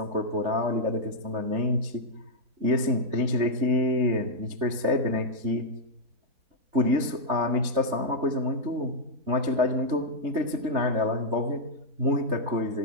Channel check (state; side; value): late; left; 3.4 ms